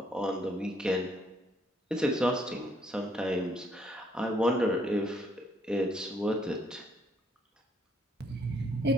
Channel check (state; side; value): normal; both; correlation 0.69